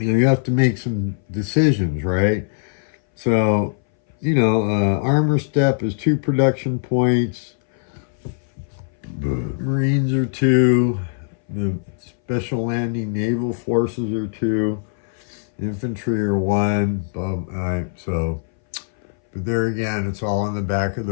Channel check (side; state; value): right; silent; 61 dB below the other